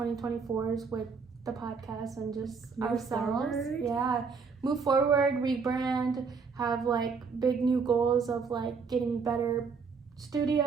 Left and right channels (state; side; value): quieter; left; 5.2 dB